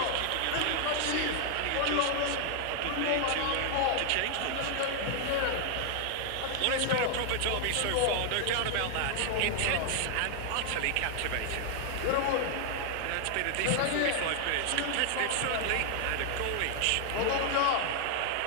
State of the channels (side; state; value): both; different; correlation 0.00